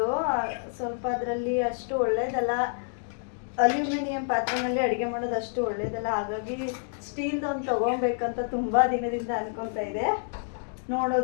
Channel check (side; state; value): right; silent; 59 dB below the other